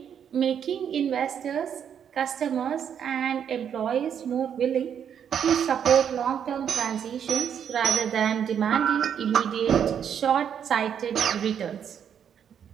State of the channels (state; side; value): quieter; left; 8.4 dB